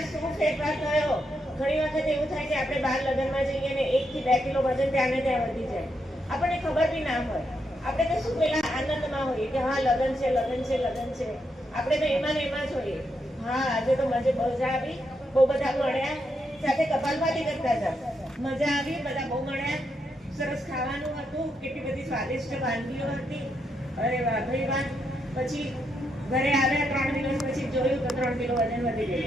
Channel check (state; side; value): normal; both; correlation 0.81